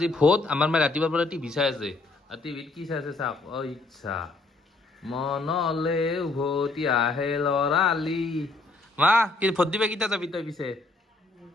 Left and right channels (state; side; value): quieter; right; 3.3 dB